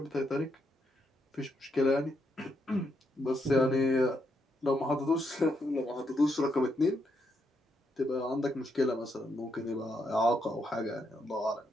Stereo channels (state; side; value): normal; both; correlation 0.79